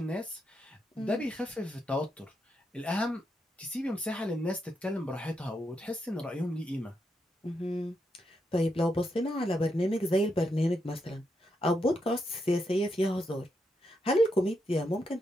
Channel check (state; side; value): normal; both; correlation 0.82